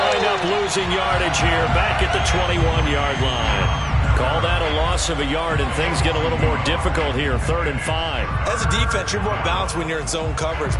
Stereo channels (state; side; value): identical; both; correlation 1.00